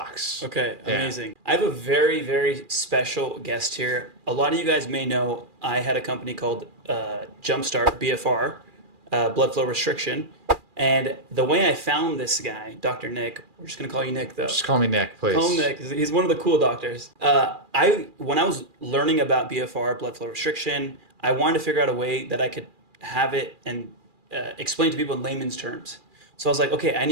Okay, Yeah. amazing. I have a very, very special guest here. A lot of you guys may know I had a company called Jumpstart, BFR, blood flow restriction. And the way I found this guy, Dr. Nick, we're just going to call you Nick though. Just call me Nick, Call him please. Nick. He's one of the cool doctors. When I was learning about BFR, blood flow restriction, I wanted to figure out a way that I could have it and explain to people in layman's terms. So I was like, okay, I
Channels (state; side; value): late; left; 2.4 ms